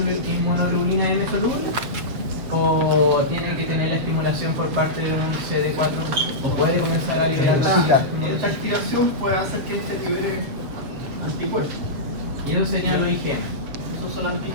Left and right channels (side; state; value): left; late; 7.5 ms